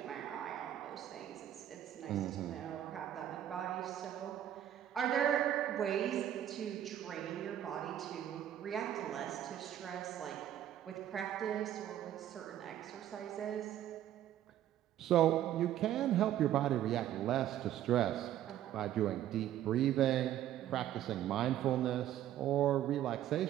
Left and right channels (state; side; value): quieter; left; 11.7 dB